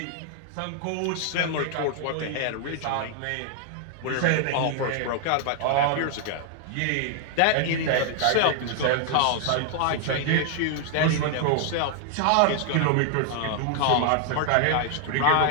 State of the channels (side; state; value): both; different; correlation 0.00